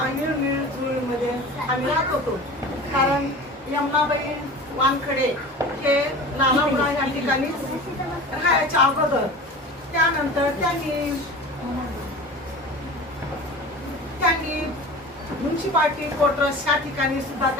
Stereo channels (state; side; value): normal; both; correlation 0.36